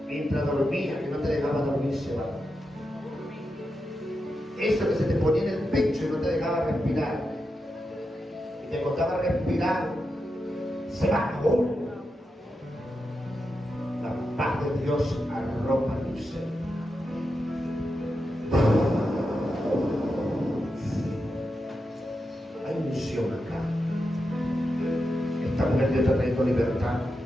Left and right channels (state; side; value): normal; both; correlation 0.88